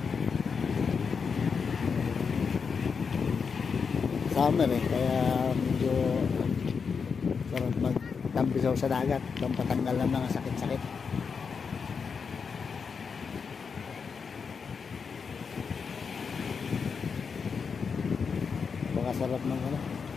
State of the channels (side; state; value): right; quieter; 5.7 dB